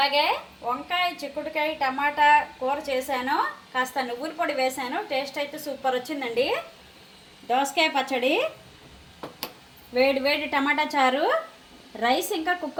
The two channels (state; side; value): identical; both; correlation 1.00